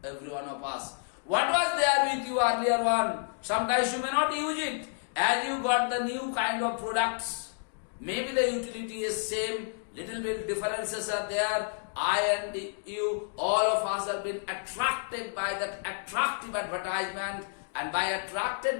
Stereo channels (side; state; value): right; silent; digital silence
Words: every one of us. What was there with you earlier one? Sometimes you may not use it, and you got the new kind of products. Maybe the utility is same, little bit differences are there. I and you, all of us have been attracted by that attractive advertisement, and by